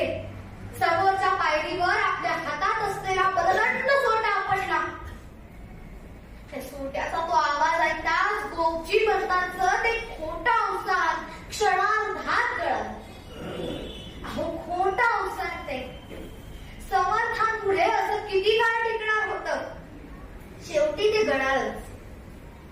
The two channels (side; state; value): both; identical; correlation 1.00